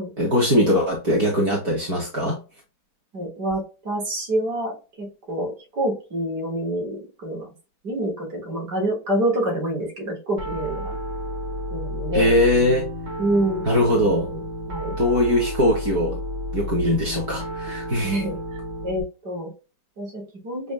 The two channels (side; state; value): left; late; 4.5 ms